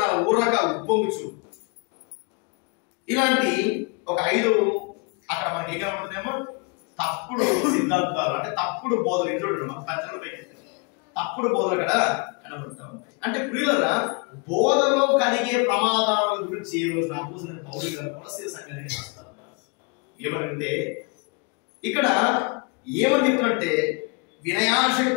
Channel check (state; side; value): quieter; right; 32.1 dB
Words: ఊరక ఉప్పొంగుచు. ఇలాంటి ఒక 5 అక్కడ మనకి ఏం కనబడుతుందేమో తప్పుడు సిద్ధాంతాలు, అంటే తప్పుడు బోధలు. ఇంట్లో మన పెద్దలు తప్పుడు బోధలు అక్కడ కనబడుతూ ఉంటాయి. అంటే ప్రియులరా, బోధలో కలిగే ప్రమాదాల గురించి ఈ రోజు అపోస్తలుడైన పౌలు గారు కొలస్సీ సంఘానికి రాస్తా ఉన్నారు. ఏమనంటే ఇక్కడ ఏమని చెప్తున్నట్టే